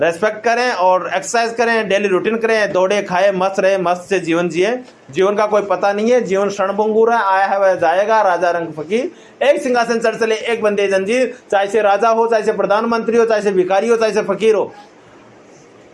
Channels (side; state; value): both; identical; correlation 1.00